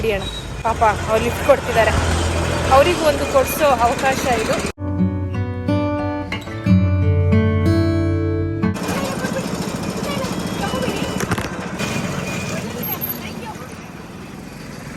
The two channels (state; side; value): identical; both; correlation 1.00